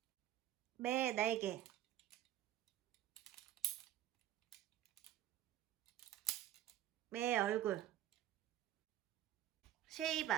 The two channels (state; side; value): quieter; left; 12.9 dB